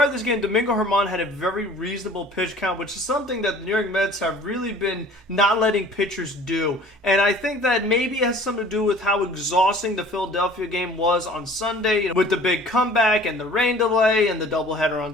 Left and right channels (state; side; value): normal; both; correlation 0.49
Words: of this game, Domingo Germán had a very reasonable pitch count, which is something that the New York Mets have really been not letting pitchers do. And I think that maybe it has something to do with how exhausting the Philadelphia game was on Sunday, with the big comeback and the rain delay and the doubleheader on